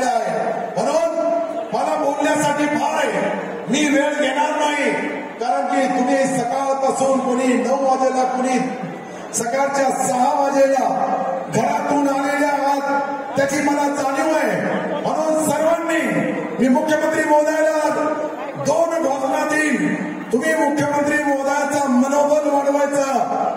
आहे. म्हणून मला बोलण्यासाठी फार आहे. मी वेळ घेणार नाही कारण की तुम्ही सकाळपासून कोणी 9 वाजेला कोणी सकाळच्या 6 वाजेला घरातून आलेल्या आहात त्याची मला जाणीव आहे. म्हणून सर्वांनी मी मुख्यमंत्री महोदयाला 2 घोषणा देईन. तुम्ही मुख्यमंत्री महोदयाचा मनोबल वाढवायचा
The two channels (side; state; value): both; identical; correlation 1.00